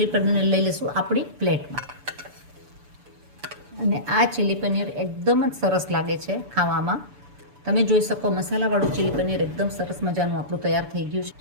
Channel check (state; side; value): late; left; 7.0 ms